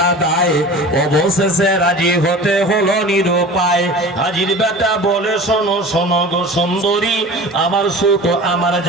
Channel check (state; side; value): normal; both; correlation 0.38